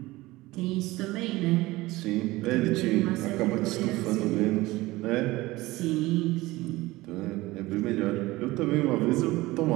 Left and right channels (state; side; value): quieter; left; 19.4 dB